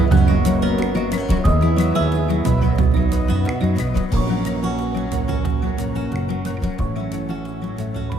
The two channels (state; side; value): normal; both; correlation 0.74